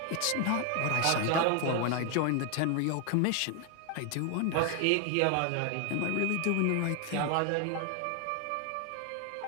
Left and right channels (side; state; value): both; different; correlation 0.01